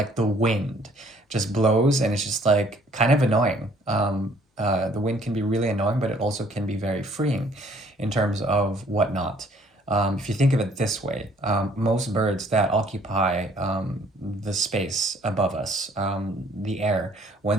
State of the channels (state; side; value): normal; both; correlation 0.60